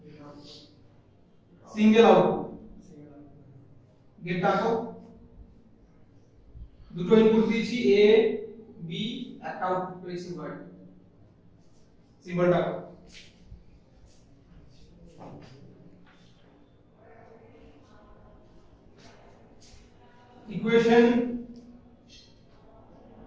সিঙ্গেল আউটপুট। গেটটা আঁকো। দুটো ইনপুট দিয়েছি এ বি, একটা আউটপুট পেয়েছি ওয়াই। সিম্বলটা আঁকো। Equation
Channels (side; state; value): both; identical; correlation 1.00